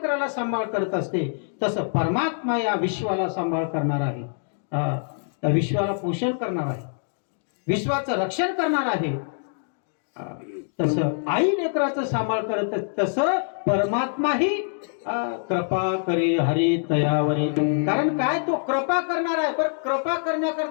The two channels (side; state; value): right; silent; digital silence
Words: सांभाळ करत असते तसं परमात्मा या विश्वाला सांभाळ करणार आहे. त्या विश्वाला पोषण करणार आहे, विश्वाचं रक्षण करणार आहे. तसं आई लेकराचं सांभाळ करत तसं परमात्माही कृपा करे हरी तयावरी. कारण काय, तो कृपा करणार आहे. पण कृपा